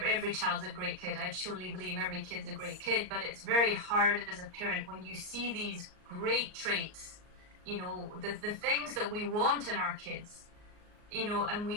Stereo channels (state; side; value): late; left; 38 ms